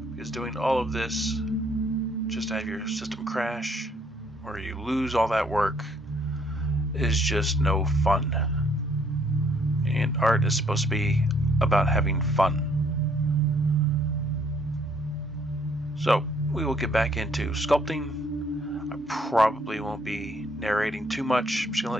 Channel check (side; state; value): both; normal; correlation 0.66